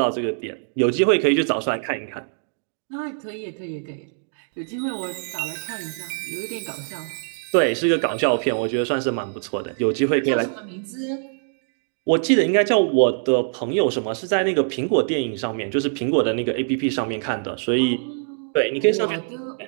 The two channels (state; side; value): silent; left; digital silence